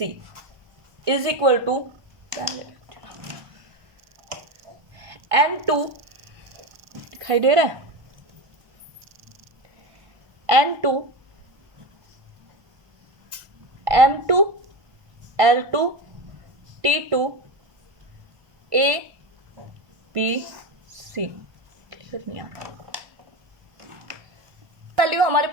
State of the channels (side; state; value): left; late; 1.3 ms